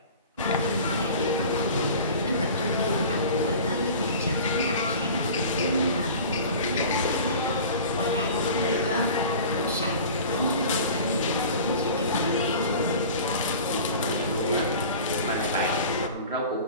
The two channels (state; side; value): inverted; both; correlation -0.40